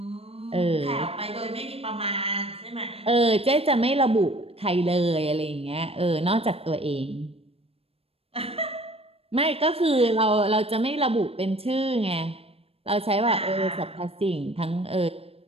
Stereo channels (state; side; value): late; left; 0.28 ms